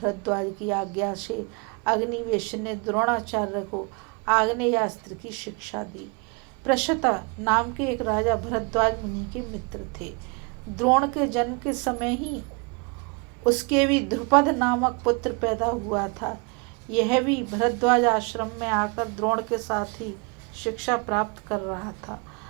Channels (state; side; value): quieter; left; 31.5 dB